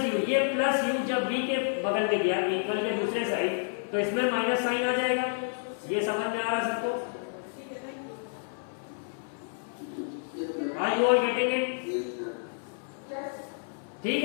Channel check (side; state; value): right; silent; 58 dB below the other